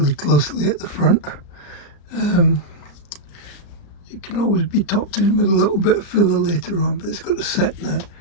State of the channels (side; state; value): right; late; 34 ms